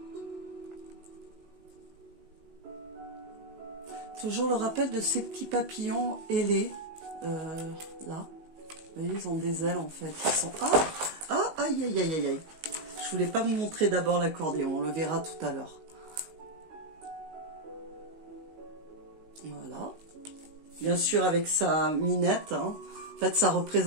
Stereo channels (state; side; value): late; left; 19 ms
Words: Toujours le rappel de ces petits papillons ailés. Là. Vous voyez, ils ont des ailes en fait. Ils sont... Ah, aïe, aïe, aïe, aïe. Je voulais pas vous montrer d'abord l'accordéon. On le verra tout à l'heure. Voilà. Bien sûr avec sa minette. Hein. En fait, ça